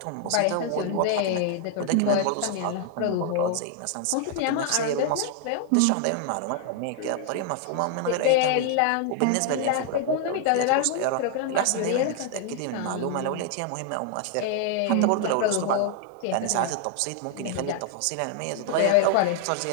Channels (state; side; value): different; both; correlation 0.00